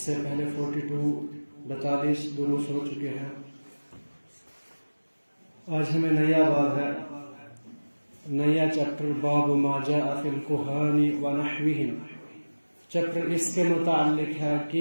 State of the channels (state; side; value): inverted; both; correlation -1.00